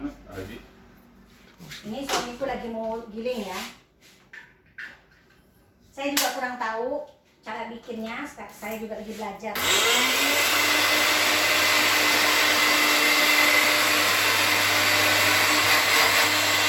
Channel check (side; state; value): both; identical; correlation 1.00